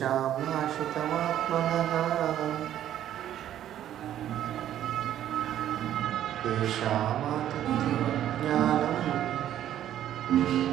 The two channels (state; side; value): quieter; left; 11.4 dB